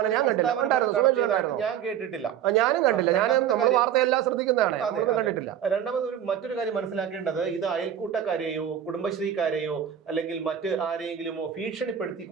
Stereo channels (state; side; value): quieter; left; 9.5 dB